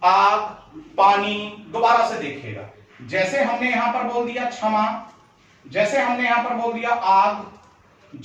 आग, पानी। दोबारा से देखिएगा, जैसे हमने यहां पर बोल दिया क्षमा, जैसे हमने यहां पर बोल दिया आग,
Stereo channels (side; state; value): both; identical; correlation 1.00